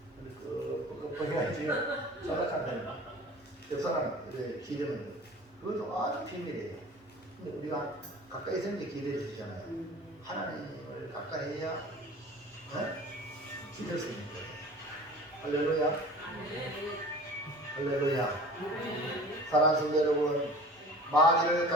보기가 지금 자작한다. 옆 사람 기대면 그것도 아주 비밀이에요. 근데 우리가 가까이 있는 게 기대해 주시잖아요. 하나님을 가까이 해야 기댈 수 있는 거예요. 할렐루야. 할렐루야. 사랑하는 성도 여러분, 마귀를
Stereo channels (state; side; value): normal; both; correlation 0.41